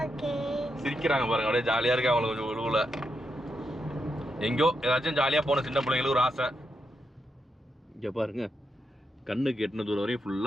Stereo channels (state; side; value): normal; both; correlation 0.84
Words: சிரிக்கிறாங்க பாருங்க, அப்படியே ஜாலியாக இருக்கு அவங்களுக்கு. கொஞ்சம் உழுவுல எங்கேயோ ஏதாச்சும் ஜாலியாக போன சின்ன பிள்ளைங்களுக்கு ஒரு ஆசை. இங்கே பாருங்க, கண்ணுக்கு எட்டின தூரம் வரையும்